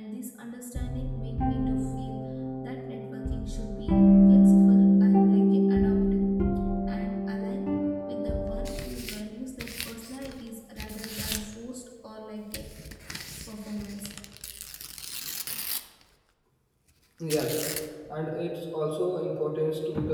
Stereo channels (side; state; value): both; identical; correlation 1.00